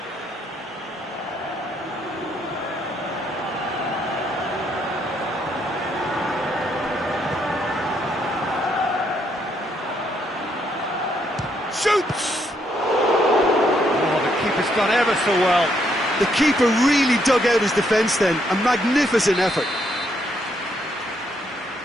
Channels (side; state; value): both; normal; correlation 0.73